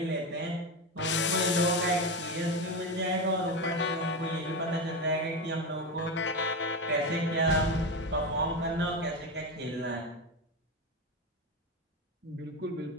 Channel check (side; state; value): both; normal; correlation 0.16